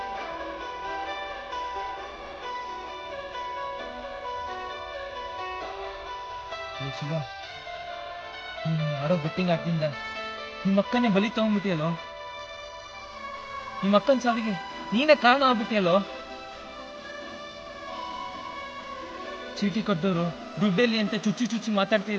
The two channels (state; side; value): identical; both; correlation 1.00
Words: ಶಿವ, ನೀನು ಆಡೋ ಬೆಟ್ಟಿಂಗ್ ಆಡ್ತಿಂದ ನಿಮ್ಮ ಅಕ್ಕನೇ ಬಲಿ ತಗೊಂಡ್ಬಿಟ್ಟಿಯಲ್ಲೋ. ನಿಮ್ಮ ಅಕ್ಕನ ಸಾವಿಗೆ ನೀನೇ ಕಾರಣ ಆಗ್ಬಿಟ್ಟಿಯಲ್ಲೋ. ಚೀಟಿ ಕೊಟ್ಟವರು ದುಡ್ಡಲ್ಲಿ ಅಂತ ಚುಚ್ಚಿ ಚುಚ್ಚಿ